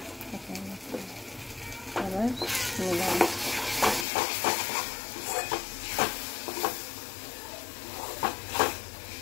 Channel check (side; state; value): right; drops out; at 4.0 s